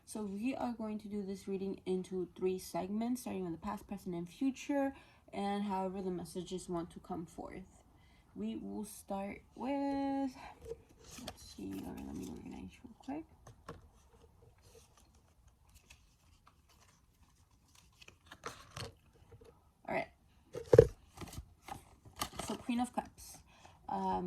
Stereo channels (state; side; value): identical; both; correlation 1.00